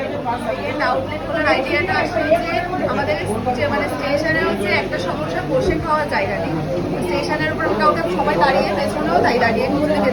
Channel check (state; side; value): identical; both; correlation 1.00